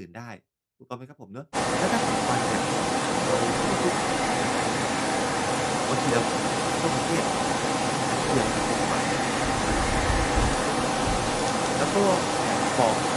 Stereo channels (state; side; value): identical; both; correlation 1.00